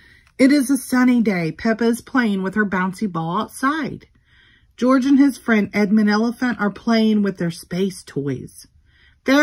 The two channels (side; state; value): both; identical; correlation 1.00